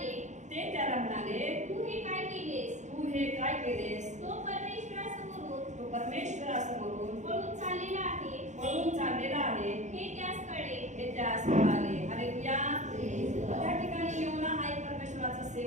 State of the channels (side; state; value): left; late; 0.34 ms